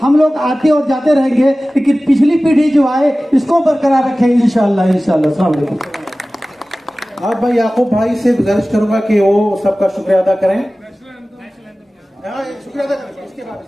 हम लोग आते और जाते रहेंगे, लेकिन पिछली पीढ़ी जो आए इसको बरकरार रखें इंशाअल्लाह। अस्सलाम वालेकुम। आप भाई याकूब भाई से गुजारिश करूंगा कि वो सबका शुक्रिया अदा करें। शुक्रिया अदा करें। इसके बाद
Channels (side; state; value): both; normal; correlation 0.97